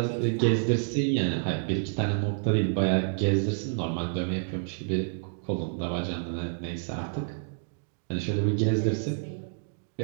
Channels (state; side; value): silent; left; digital silence